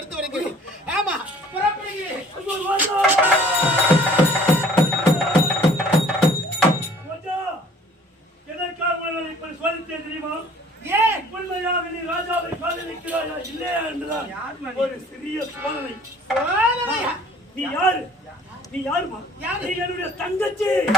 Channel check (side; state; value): both; normal; correlation 0.53